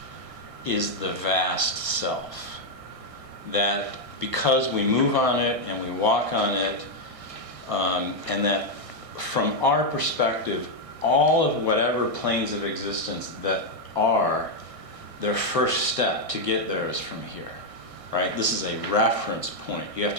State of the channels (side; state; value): left; late; 1.4 ms